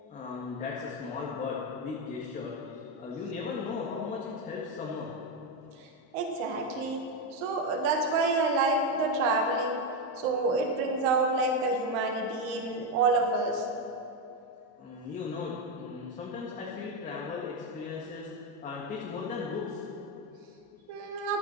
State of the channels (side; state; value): both; normal; correlation 0.08